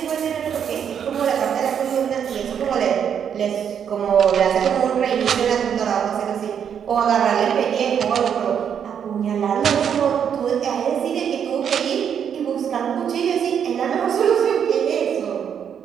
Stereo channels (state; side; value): quieter; left; 8.1 dB